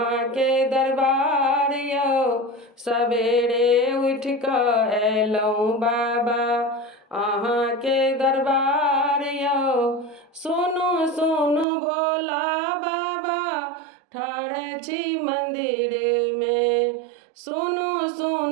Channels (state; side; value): drops out; left; at 11.7 s